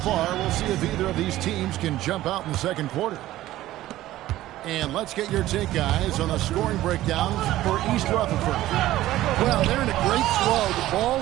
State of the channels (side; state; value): left; quieter; 15.2 dB